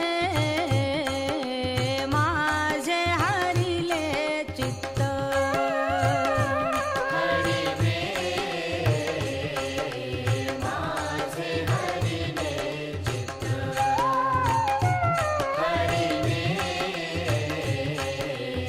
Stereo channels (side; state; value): both; identical; correlation 1.00